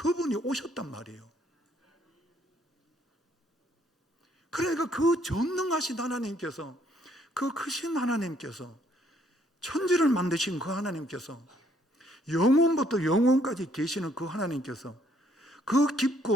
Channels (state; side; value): normal; both; correlation 0.67